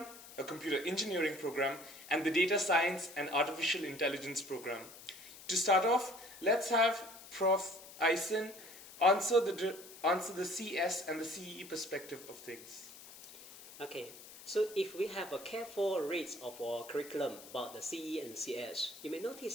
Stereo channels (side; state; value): left; noise; hiss, 17 dB below the sound